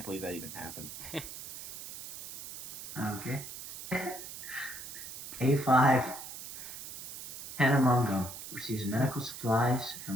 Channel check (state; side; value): noise; right; hiss, 11 dB below the sound